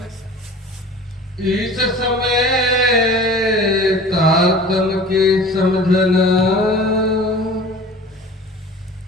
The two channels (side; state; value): both; normal; correlation 0.42